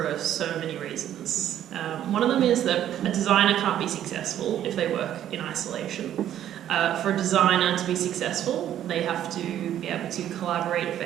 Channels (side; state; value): left; quieter; 11.2 dB